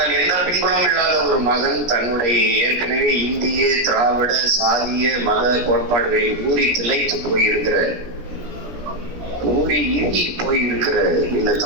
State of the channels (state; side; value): late; left; 17 ms